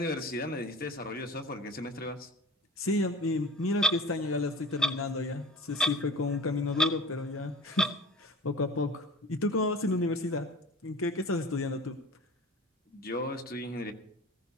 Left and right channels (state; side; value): normal; both; correlation 0.38